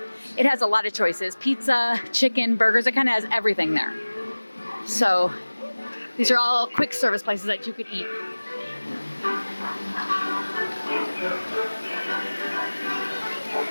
It has a lot of choices, pizza, chicken, burgers, it kind of has everything there. So these are all quick service places that you could eat.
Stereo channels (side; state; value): both; inverted; correlation -1.00